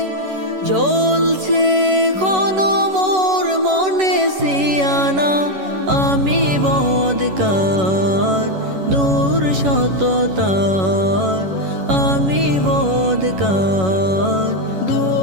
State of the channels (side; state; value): left; late; 11 ms